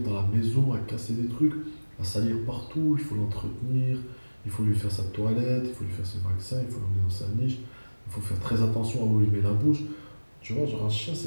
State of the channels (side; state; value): both; inverted; correlation -1.00